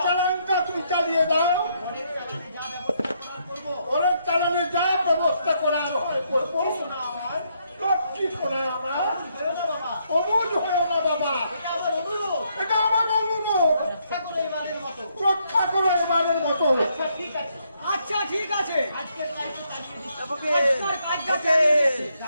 রক্ষা করো এবারের মতো। আচ্ছা ঠিক আছে।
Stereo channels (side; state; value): both; inverted; correlation -0.74